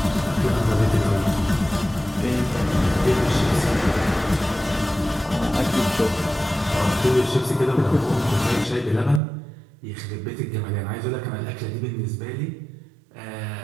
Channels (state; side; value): drops out; left; at 9.2 s